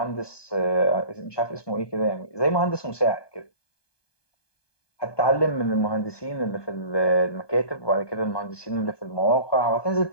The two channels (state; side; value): late; right; 1.2 ms